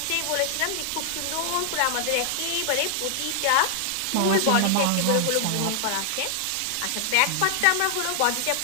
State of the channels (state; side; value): different; both; correlation 0.00